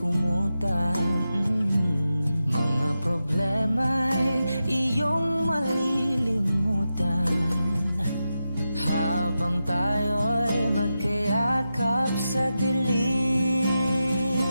Mga problema'y iyong malilimutan habang tayo'y magkayakap sa dilim.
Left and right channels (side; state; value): both; inverted; correlation -0.90